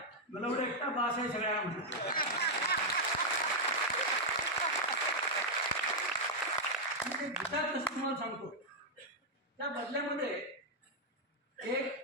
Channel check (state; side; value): normal; both; correlation -0.02